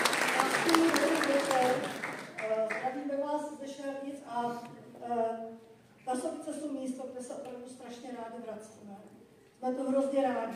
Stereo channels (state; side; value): identical; both; correlation 1.00